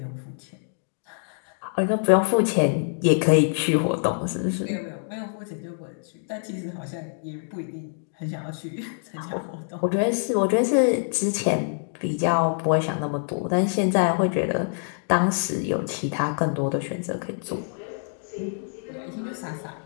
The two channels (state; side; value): silent; right; digital silence